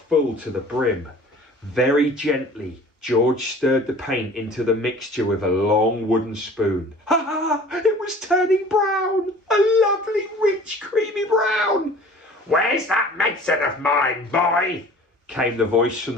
to the brim. Very gently, George stirred the paint into the mixture with a long wooden spoon. Ha ha! It was turning brown! A lovely, rich, creamy brown! Where's that medicine of mine, boy? Came the voice from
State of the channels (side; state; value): both; normal; correlation 0.46